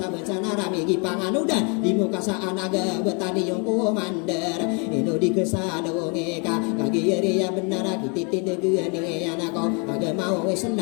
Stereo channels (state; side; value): quieter; right; 34.7 dB